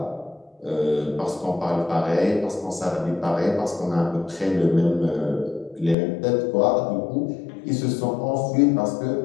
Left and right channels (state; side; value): drops out; right; at 6.0 s